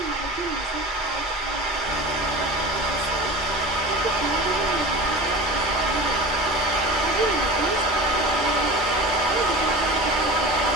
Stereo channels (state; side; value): normal; both; correlation 0.34